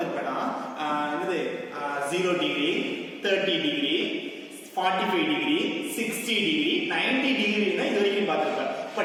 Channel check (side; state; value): both; identical; correlation 1.00